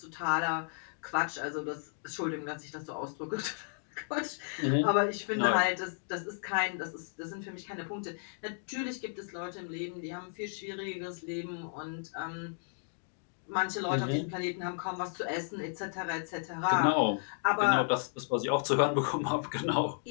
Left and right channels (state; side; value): silent; right; digital silence